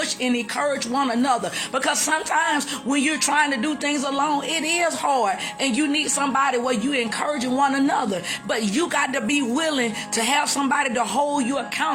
and encourage one another. Because sometimes when you're trying to do things alone, it is hard, and you need somebody where you encouraging one another. But you got to be willing to have somebody to hold you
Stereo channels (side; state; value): both; identical; correlation 1.00